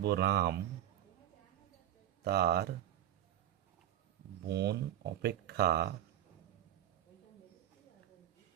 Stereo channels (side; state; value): left; quieter; 12.0 dB